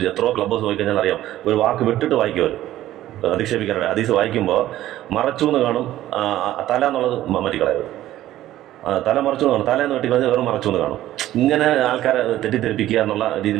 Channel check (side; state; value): left; quieter; 14.0 dB